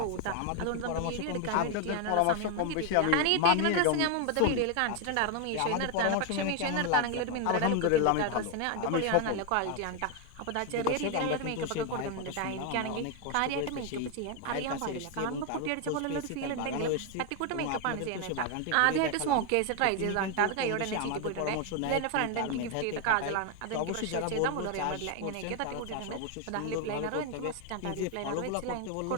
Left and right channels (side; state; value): both; different; correlation 0.01